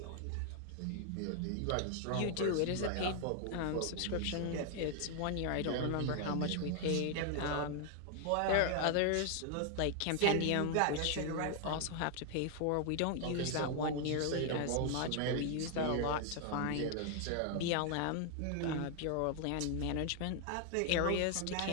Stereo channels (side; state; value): both; different; correlation 0.00